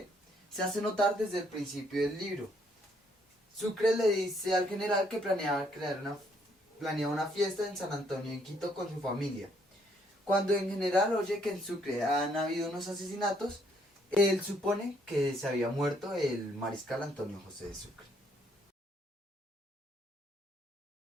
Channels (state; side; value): normal; both; correlation 0.69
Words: hace notar desde el principio del libro. Sucre le dice al general que planea una fiesta en San Antonio en Quito con su familia. Cuando en general oye que en Sucre han habido unos asesinatos, él supone que se había muerto el mariscal Antonio José de Sucre.